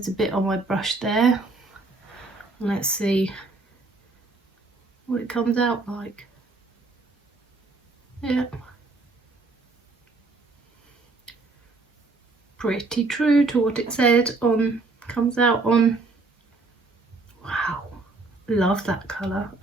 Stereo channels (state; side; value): quieter; left; 3.5 dB